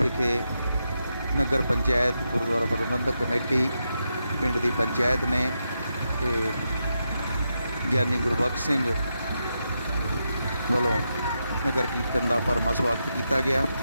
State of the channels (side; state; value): both; inverted; correlation -0.85